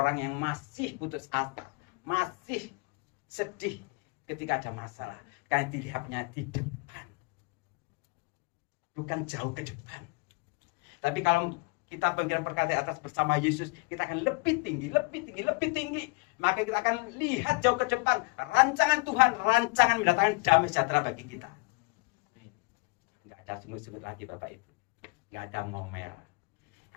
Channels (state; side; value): quieter; right; 27.9 dB